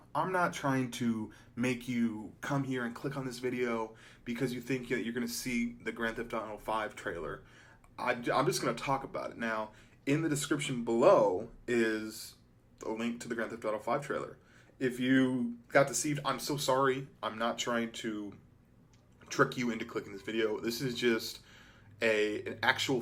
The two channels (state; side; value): identical; both; correlation 1.00